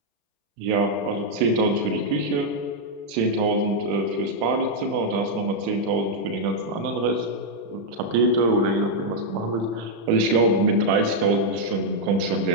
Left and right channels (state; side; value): late; left; 35 ms